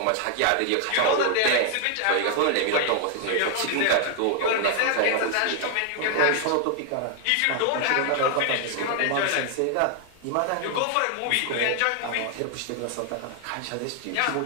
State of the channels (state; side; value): different; both; correlation 0.00